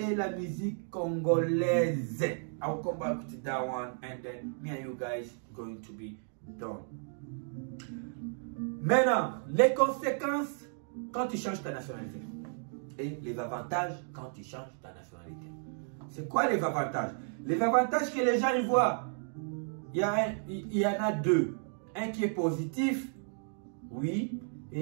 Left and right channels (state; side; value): silent; left; 56 dB below the other